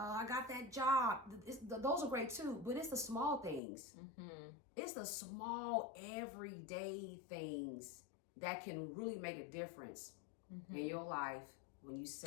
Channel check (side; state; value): right; drops out; at 3.6 s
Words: got that job. Those are great too, but it's the small things. It's the small everyday things that can really make a difference in your life when you